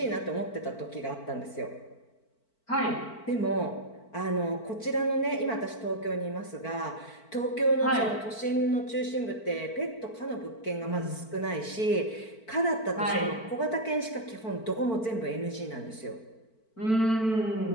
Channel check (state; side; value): late; right; 4.5 ms